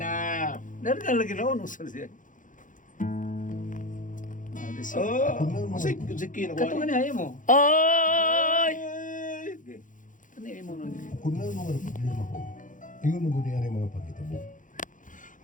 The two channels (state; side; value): late; right; 0.38 ms